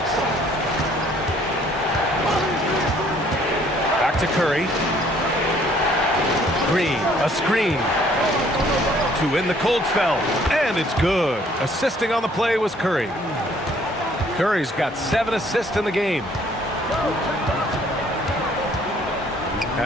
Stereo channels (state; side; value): normal; both; correlation 0.61